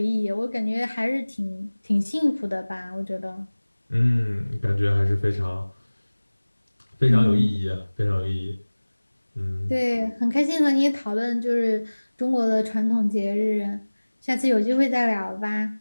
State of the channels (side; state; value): both; inverted; correlation -1.00